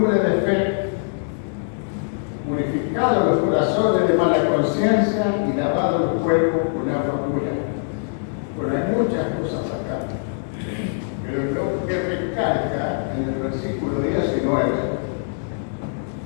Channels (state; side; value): silent; right; digital silence